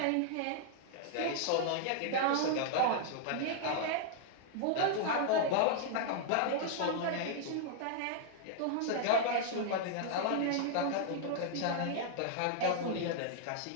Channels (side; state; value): both; different; correlation -0.01